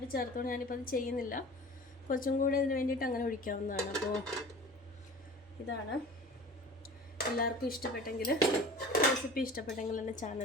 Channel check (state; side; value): normal; both; correlation 0.41